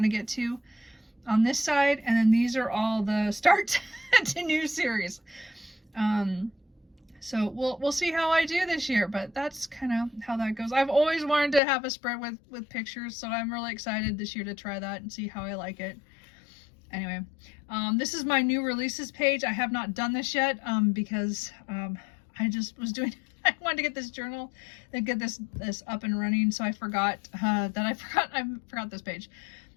to get to on this side. And then these are all the start to new series. So we'll see how I do this year, but that's kind of how that goes. I've always wanted to have a spread with pictures, so I'm really excited this year to try that and see how I like it. Anyway, this is my new releases page. I have not done this yet because I just was doing, I wanted to get this journal and get this up and running, so I forgot I forgot this page.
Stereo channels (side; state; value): right; drops out; at 11.6 s